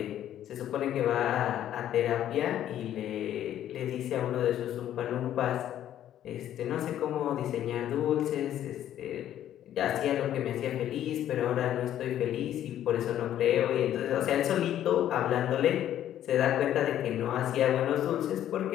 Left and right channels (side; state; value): right; quieter; 11.5 dB